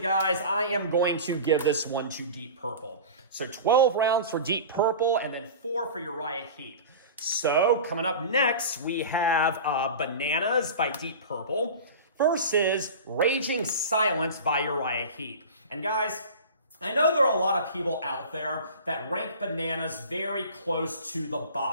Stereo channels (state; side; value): inverted; both; correlation -0.34